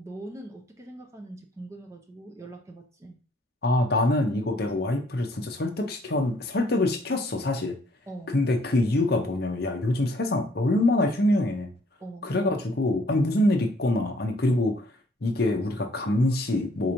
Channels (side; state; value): both; normal; correlation 0.63